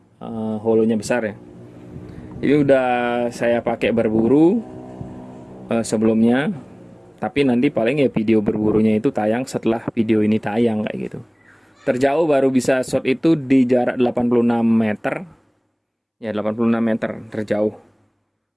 holonya besar ya. Ini udah saya pakai berburu sebelumnya, tapi nanti paling ya video berburunya itu tayang setelah video ini tayang kayak gitu. Terjauh baru bisa shot itu di jarak 86 meter. Ya, 86 meter terjauh.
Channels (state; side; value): identical; both; correlation 1.00